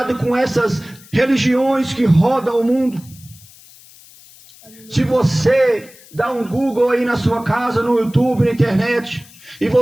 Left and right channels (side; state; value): left; noise; hiss, 23 dB below the sound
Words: com essas religiões que rodam o mundo. Se você dá um Google aí na sua casa, no YouTube, na internet, e